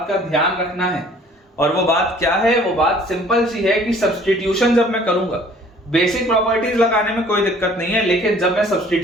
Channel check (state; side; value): normal; both; correlation 0.54